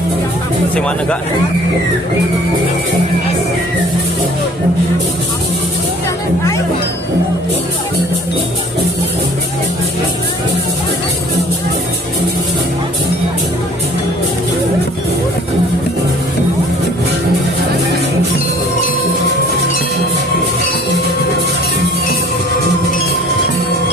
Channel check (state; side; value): normal; both; correlation 0.52